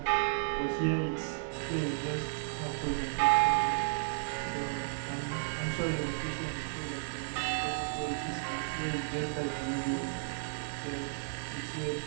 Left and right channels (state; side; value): silent; left; digital silence